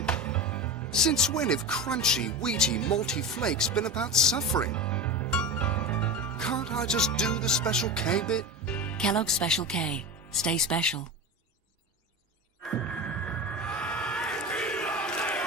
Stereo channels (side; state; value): both; normal; correlation 0.25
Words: Since when have crunchy, wheaty, malty flakes been about suffering? Can't I just do the Special K bit? Kellogg's Special K. Stay special.